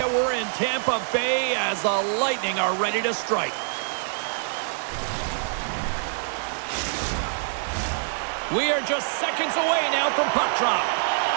We're in Tampa Bay as the Lightning are ready to strike. We are just seconds away now from puck drop.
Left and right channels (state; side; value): silent; left; digital silence